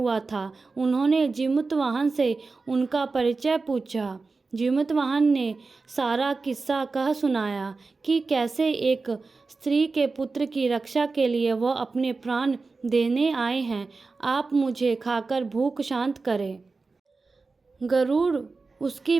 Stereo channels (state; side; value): quieter; left; 4.0 dB